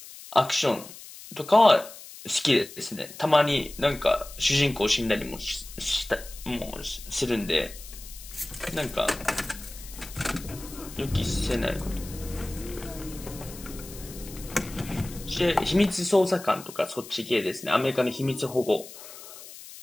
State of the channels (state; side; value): noise; left; hiss, 15 dB below the sound